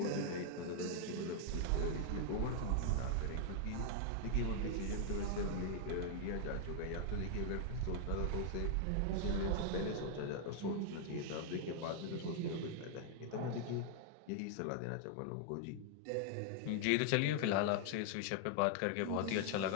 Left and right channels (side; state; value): both; different; correlation 0.00